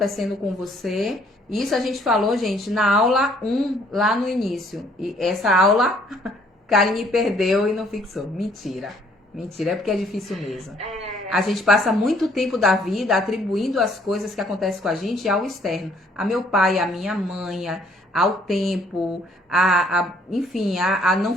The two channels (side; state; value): both; normal; correlation 0.63